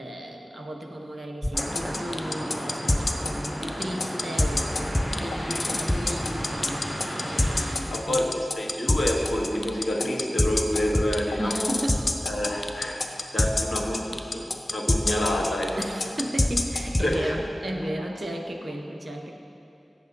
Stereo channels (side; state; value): both; normal; correlation 0.96